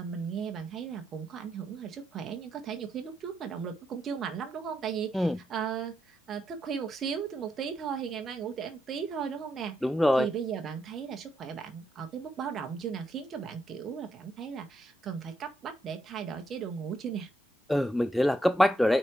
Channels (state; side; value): normal; both; correlation 0.80